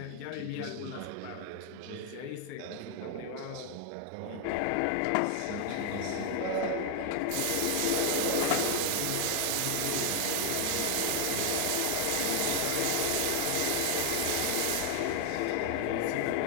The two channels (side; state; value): both; different; correlation 0.00